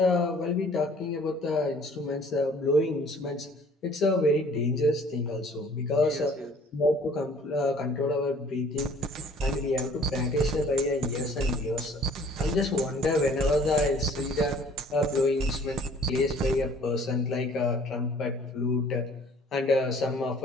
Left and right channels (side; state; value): both; normal; correlation 0.54